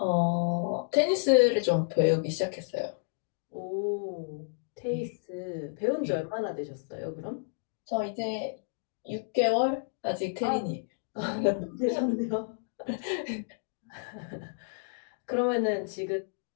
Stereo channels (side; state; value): right; silent; digital silence